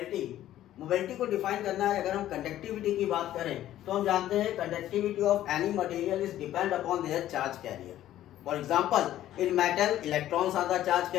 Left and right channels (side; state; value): right; quieter; 13.0 dB